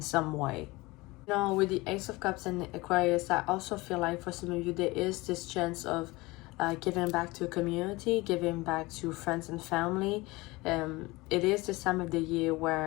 some way. With the Ace of Cups and Aquarius, I also feel like for some of you, there is this chance of giving back to a community, giving back to friends and family. It is this time of the year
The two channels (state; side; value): quieter; right; 22.1 dB